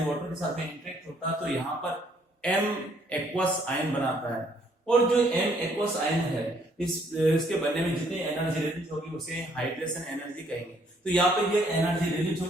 वाटर के साथ में इंटरेक्ट होता है, तो यहाँ पर एम एक्वस आयन बनाता है, और जो एम एक्वस आयन है इसके बनने में जितनी एनर्जी रिलीज होगी उसे हाइड्रेशन एनर्जी कहेंगे। तो यहाँ पे ये एनर्जी रिलीज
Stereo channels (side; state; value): both; normal; correlation 0.66